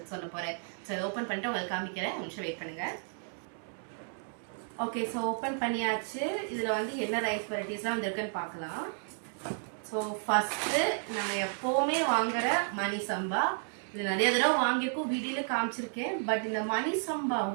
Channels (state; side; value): silent; left; 56 dB below the other